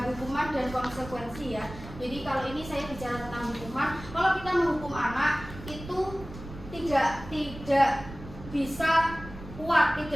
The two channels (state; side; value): noise; right; rumble, 14 dB below the sound